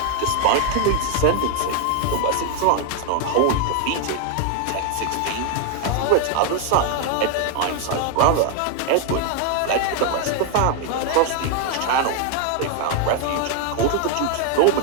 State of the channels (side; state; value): both; different; correlation 0.00